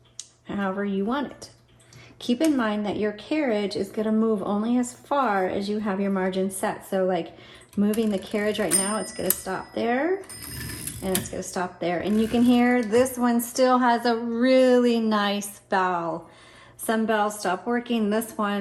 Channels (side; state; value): both; identical; correlation 1.00